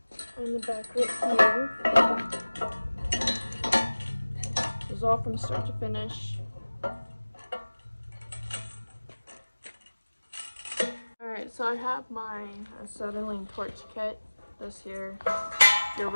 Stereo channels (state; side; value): inverted; both; correlation -1.00